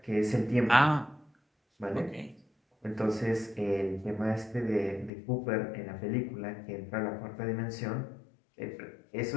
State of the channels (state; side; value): drops out; right; at 5.1 s